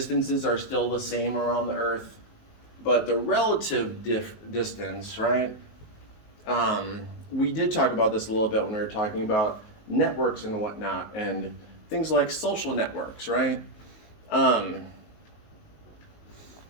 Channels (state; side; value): late; right; 19 ms